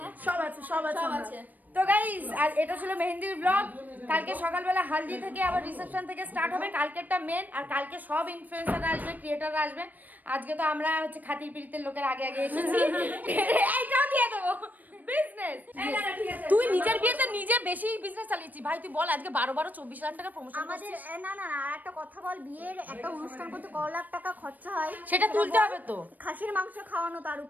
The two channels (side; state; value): left; late; 0.083 ms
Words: সব আছে। আছে। তো তো গাইস আর এটা ছিল মেহেন্দির ব্লগ। কালকে সকালবেলা হালদি থেকে আবার রিসেপশন থেকে স্টার্ট হবে, কালকেরটা মেন। আর কালকে সব ইনফ্লুয়েন্সাররা আসবে, ক্রিয়েটররা আসবে। আজকে তো আমরা হচ্ছে খাতির পিড়িতের লোকের আগে আগে এসেছি। এইটাও দিয়ে দেবো বিজনেস। তুই নিজের বিয়েতে নিজে বেশি বিজনেস চালিয়েছি ভাই। তুই বল আজকে 12-24 লাখ টাকা প্রমোশন আমাদের না না না একটা কথা বল, বিয়ের একটা অনুষ্ঠান করতে কত লাখ টাকা খরচা হয় সেটা তুলতে হবে তো। খাসির মাংস খাওয়ানো তার